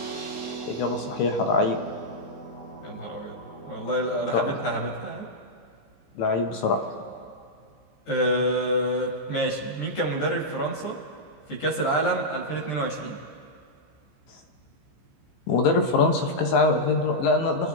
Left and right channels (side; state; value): right; late; 15 ms